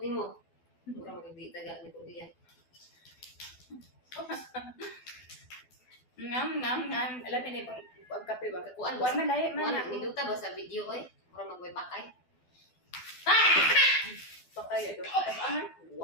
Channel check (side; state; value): right; late; 12 ms